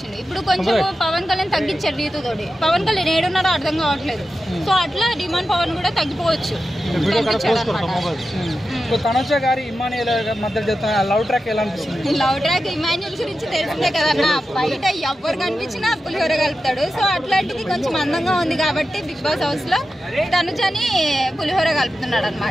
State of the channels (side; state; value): both; normal; correlation 0.91